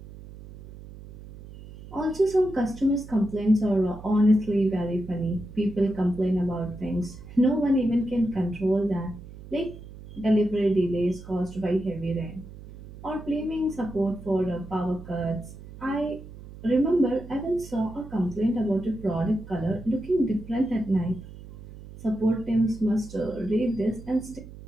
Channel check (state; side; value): noise; right; hum, 16 dB below the sound